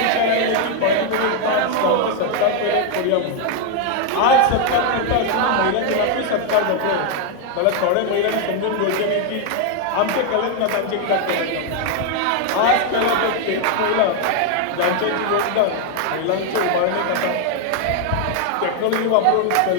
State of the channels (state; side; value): different; both; correlation 0.01